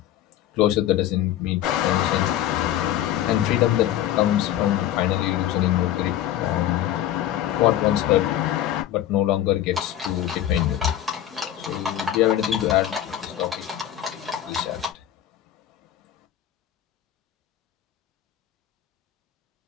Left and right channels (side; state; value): right; quieter; 12.0 dB